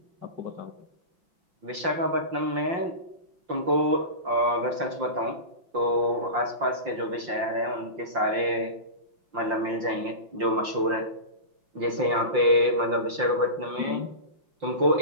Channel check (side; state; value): left; late; 5.7 ms